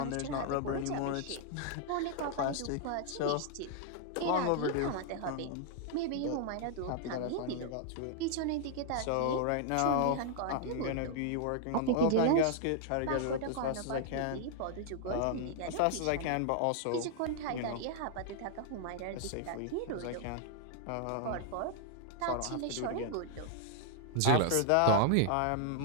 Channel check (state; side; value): different; both; correlation -0.01